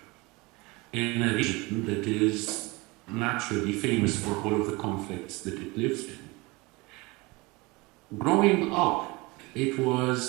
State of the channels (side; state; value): left; quieter; 24.5 dB